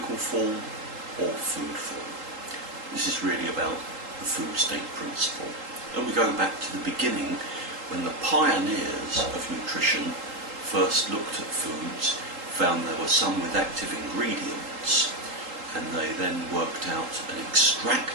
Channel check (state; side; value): late; left; 3.8 ms